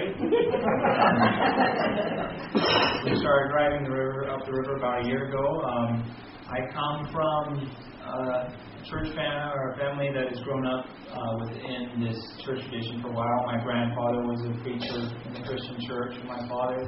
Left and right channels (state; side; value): identical; both; correlation 1.00